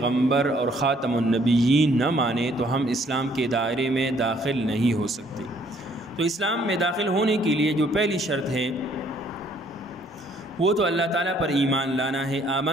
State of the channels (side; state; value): both; normal; correlation 0.63